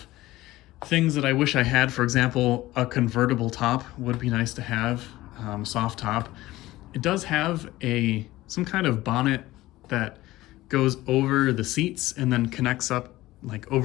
things that I wish I had. For example, a convertible top would be nice to have, soft top. It does have some kind of bonnet that goes over the seats and then connects up like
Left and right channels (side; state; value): right; quieter; 17.3 dB